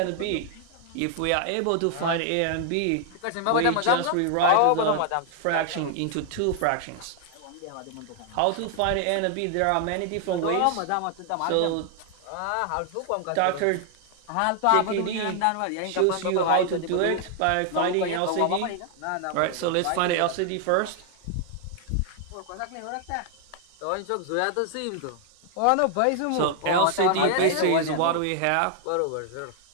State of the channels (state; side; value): different; both; correlation 0.00